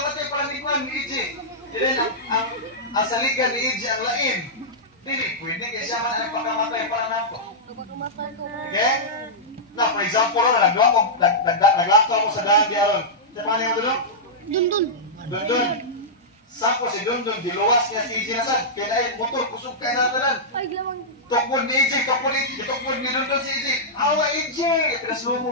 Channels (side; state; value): both; normal; correlation -0.11